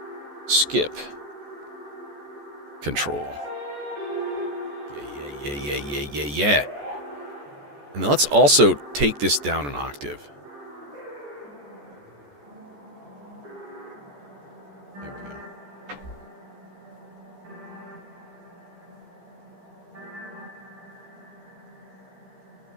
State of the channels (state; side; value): late; left; 14 ms